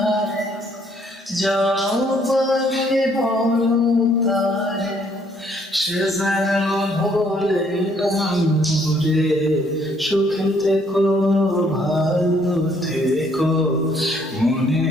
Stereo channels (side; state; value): both; normal; correlation 0.66